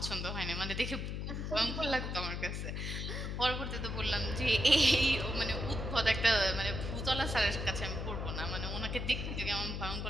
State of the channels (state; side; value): noise; left; hum, 4 dB below the sound